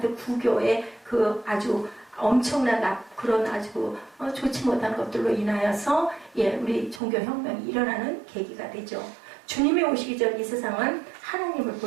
구교의 그 아주 엄청난 그런 아주 좋지 못한 것들로 인하여서 우리 종교혁명이 일어나는 계기가 되죠. 주님이 오시기 전 이 세상은 하나님을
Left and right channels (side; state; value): left; drops out; at 7.0 s